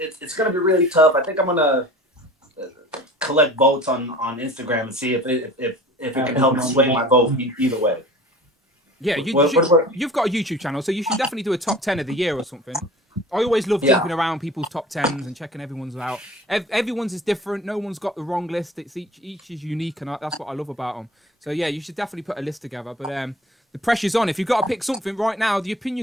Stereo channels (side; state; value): both; normal; correlation 0.42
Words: gonna be really tough. I think I'm gonna collect votes on Instagram and see if it can help sway my vote either way. Yeah, you've got a YouTube channel, so you should definitely do a top 10 of the year or something. I always love jumping around people's top 10s and checking everyone's out. Everyone's is different. No one's got the wrong list. It's each is unique, and that's what I love about them. So yeah, you should definitely put a list together. But the pressure's on. If you've got to pick something right now, the